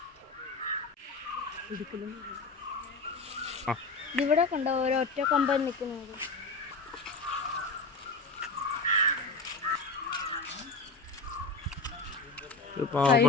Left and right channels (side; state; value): right; quieter; 3.6 dB